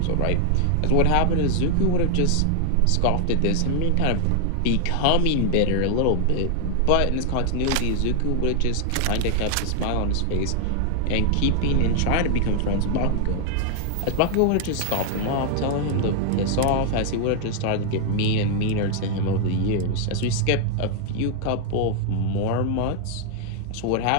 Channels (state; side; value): different; both; correlation 0.00